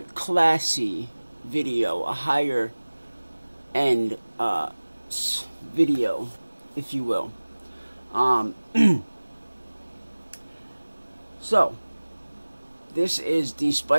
classy video, a higher end video, if you will. So, this is the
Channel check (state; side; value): inverted; both; correlation -1.00